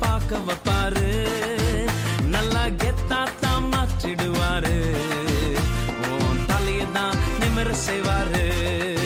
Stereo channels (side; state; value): both; identical; correlation 1.00